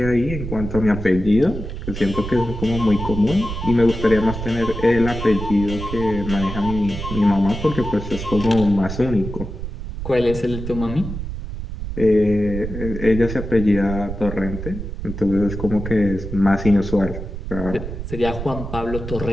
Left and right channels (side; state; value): right; noise; rumble, 7 dB below the sound